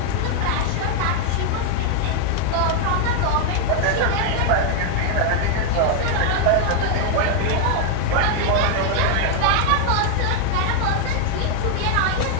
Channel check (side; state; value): both; different; correlation 0.00